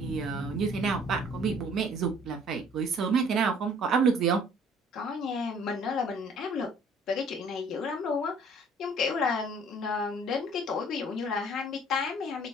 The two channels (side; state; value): both; normal; correlation 0.55